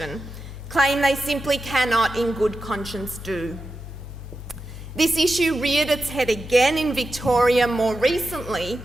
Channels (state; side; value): normal; both; correlation 0.90